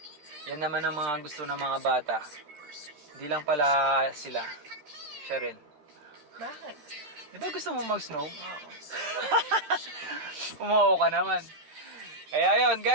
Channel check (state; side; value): late; left; 13 ms